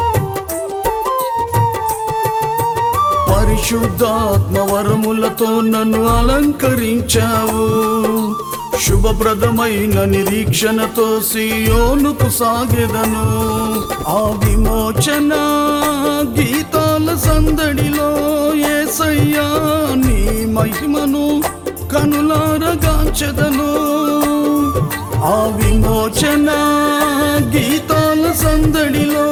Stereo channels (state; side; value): identical; both; correlation 1.00